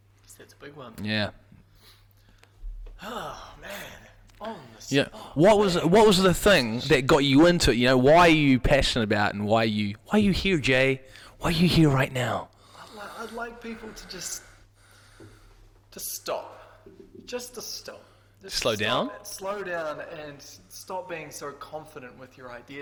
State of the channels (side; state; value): both; identical; correlation 1.00